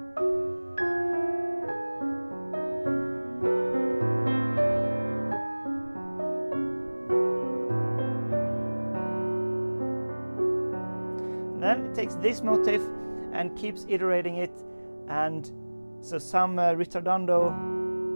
Then it takes this motif and keeps iterating it, and so some ritardando,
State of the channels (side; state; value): both; inverted; correlation -1.00